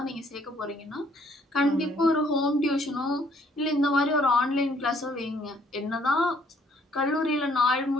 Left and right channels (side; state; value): both; normal; correlation 0.64